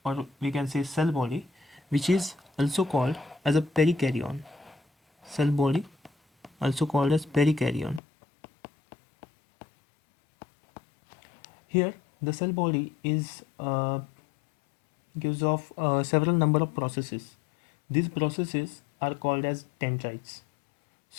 or we can say cell body, which is also called as a perikaryon. Cell body, also called as perikaryon. Here, the cell body is gives off several number of processes. These processes are called as dendrites.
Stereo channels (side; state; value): right; drops out; at 8.0 s